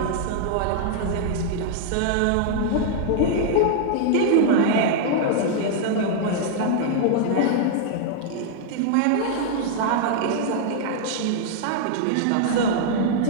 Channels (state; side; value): different; both; correlation -0.01